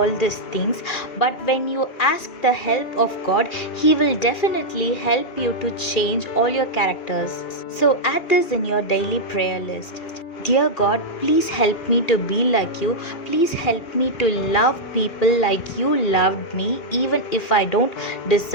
these things, but when you ask the help of God, He will definitely help you to change all your characters. So add this in your daily prayer list. Dear God, please help me to be like you. Please help me to love people like you loved me, even if I don't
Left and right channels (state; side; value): late; right; 2.4 ms